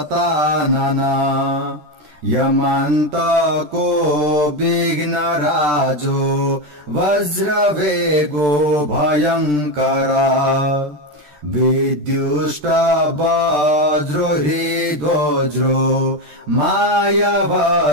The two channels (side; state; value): left; late; 13 ms